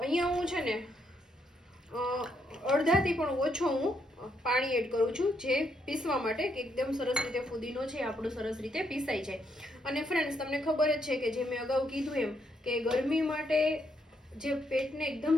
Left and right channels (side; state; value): both; normal; correlation 0.76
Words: હું છે ને અડધાથી પણ ઓછો હું પાણી એડ કરું છું, જે પીસવા માટે કે એકદમ સરસ રીતે ફુદીનો છે આપણો સરસ રીતે પીસાઈ જાય. અને ફ્રેન્ડ્સ, તમને ખબર જ છે કે જે મેં અગાઉ કીધું એમ કે ગરમી માટે જે પેટને એકદમ